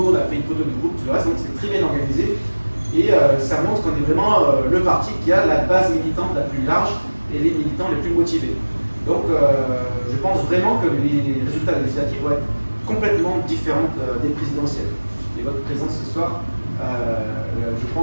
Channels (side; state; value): both; inverted; correlation -1.00